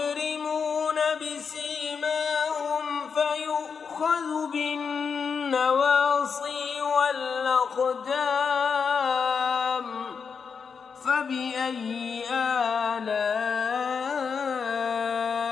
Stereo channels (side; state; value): right; quieter; 6.0 dB